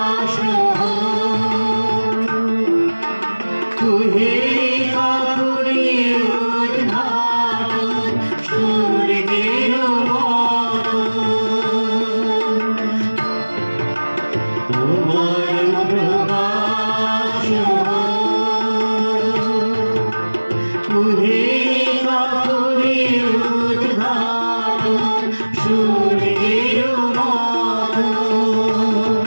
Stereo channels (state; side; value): inverted; both; correlation -1.00